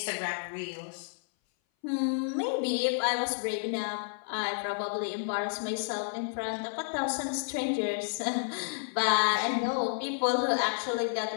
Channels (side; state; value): right; silent; 57 dB below the other